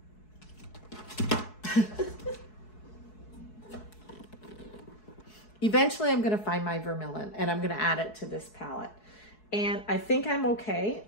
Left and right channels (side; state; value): right; late; 4.7 ms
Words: eventually I'm gonna find my vermilion and I'm gonna add it to this palette. And I think I'm okay